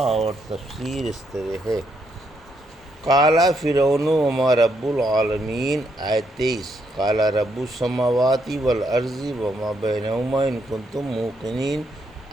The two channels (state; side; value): normal; both; correlation 0.76